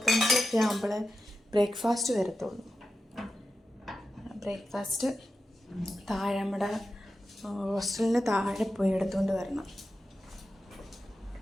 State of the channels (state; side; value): normal; both; correlation 0.91